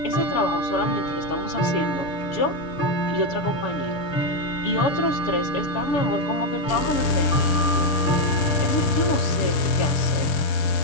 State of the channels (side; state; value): right; late; 6.7 ms